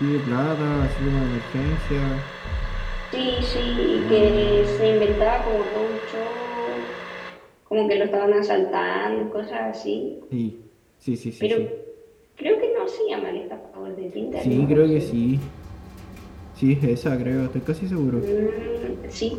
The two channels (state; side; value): identical; both; correlation 1.00